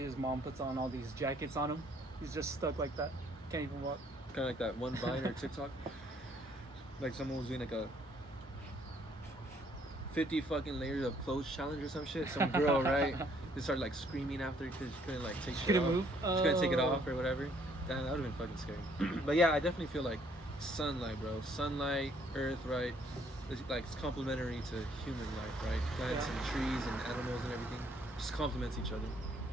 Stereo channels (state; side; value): normal; both; correlation 0.64